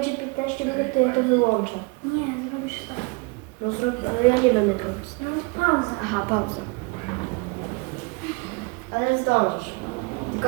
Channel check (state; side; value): quieter; left; 28.9 dB